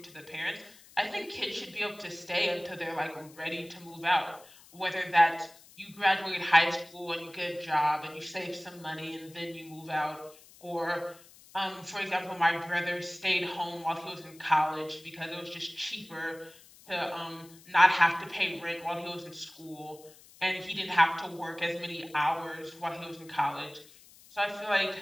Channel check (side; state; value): left; noise; hiss, 23 dB below the sound